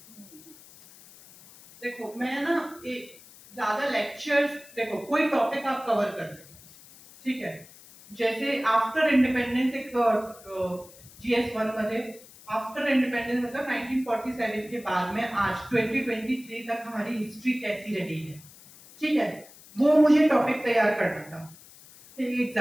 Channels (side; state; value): left; noise; hiss, 21 dB below the sound